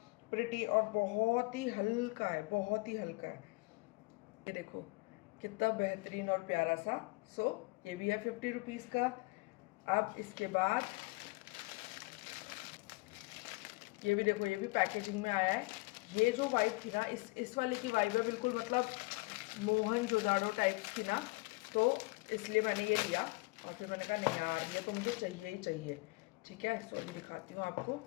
प्रिटी और बहुत ही हल्का है, बहुत ही हल्का है। ये देखो कितना बेहतरीन और प्यारा सा। सो ये भी है 50 रुपीज़ का। अब इसके बाद ये भी देखो, ये भी पैकेजिंग में आया है। ये जो वाइब थी ना, इस वाले की वाइब है बिल्कुल, मतलब मोहनजोदाड़ो टाइप की ना, तो इसलिए मैंने ये लिया। और फिर मैंने कहा नहीं यार ये तो मुझे चाहिए ही चाहिए। ठीक है, सो अभी दिखाती हूँ आपको।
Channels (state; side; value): quieter; right; 25.8 dB